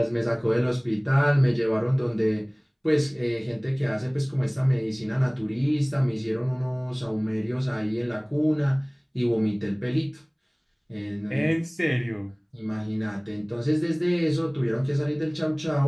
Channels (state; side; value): identical; both; correlation 1.00